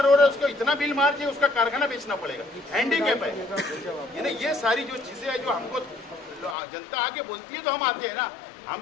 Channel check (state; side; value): drops out; right; at 6.6 s